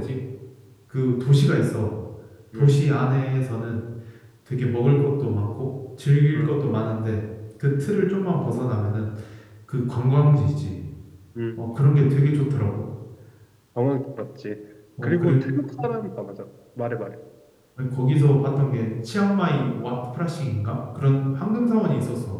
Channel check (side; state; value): both; identical; correlation 1.00